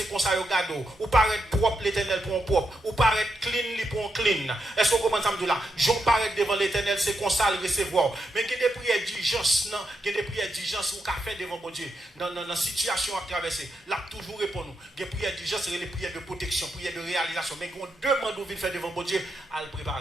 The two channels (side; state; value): both; normal; correlation 0.84